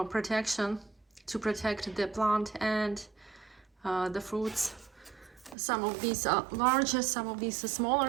protection to protect the plant and the fruits. Some of these are larger, some of these are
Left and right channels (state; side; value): drops out; left; at 5.6 s